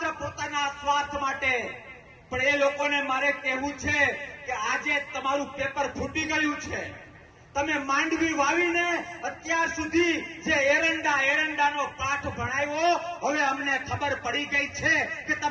પોતાના સ્વાર્થ માટે, પણ એ લોકોને મારે કહેવું છે કે આજે તમારું પેપર ફૂટી ગયું છે. તમે માંડવી વાવીને અત્યાર સુધી જે એરંડાનો પાઠ ભણાવ્યો, હવે અમને ખબર પડી ગઈ છે કે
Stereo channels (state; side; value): identical; both; correlation 1.00